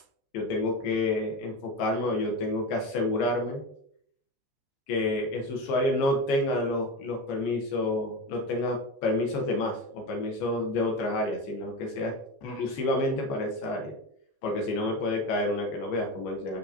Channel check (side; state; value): right; late; 14 ms